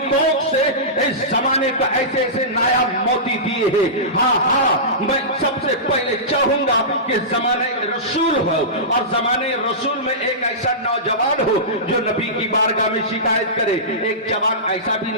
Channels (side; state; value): both; normal; correlation -0.19